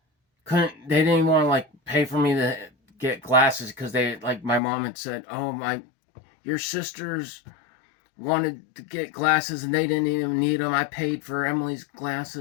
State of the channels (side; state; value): right; drops out; at 4.6 s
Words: they didn't even want to like pay for me to get glasses, because my mom had said, oh, your sisters wanted to get glasses and they didn't even need them. I paid for Emily's